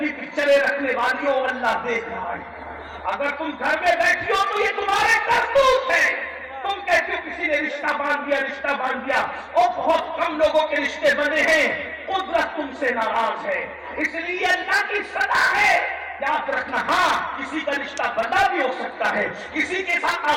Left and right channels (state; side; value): identical; both; correlation 1.00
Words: پکچریں رکھنے والیوں اللہ دیکھ رہا ہے. اگر تم گھر میں بیٹھی ہو تو یہ تمہارے کرتوت ہے. تم کہتے ہو کسی نے رشتہ باندھ دیا اور بہت کم لوگوں کے رشتے بنے ہیں. قدرت تم سے ناراض ہے اس لیے اللہ کی سزا ہے. یاد رکھنا ہاں کسی کا رشتہ بندہ بھی ہو سکتا ہے کسی کے ساتھ